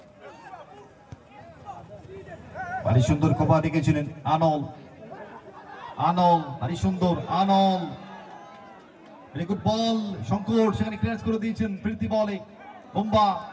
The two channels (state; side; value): identical; both; correlation 1.00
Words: ভারী সুন্দর কভার রেখেছিলেন আনল, আনল ভারী সুন্দর, আনল ভেরি গুড বল। শঙ্কর সেখানে ক্লিয়ার করে দিয়েছেন প্রীতি বলে। বুম্বা